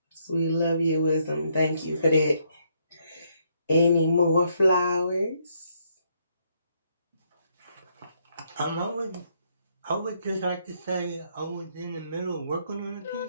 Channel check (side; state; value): both; inverted; correlation -0.73